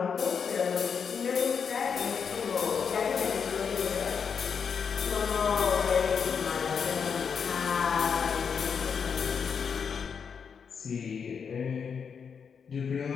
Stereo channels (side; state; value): right; quieter; 6.5 dB